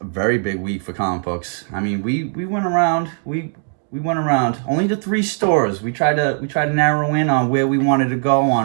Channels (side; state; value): left; silent; 58 dB below the other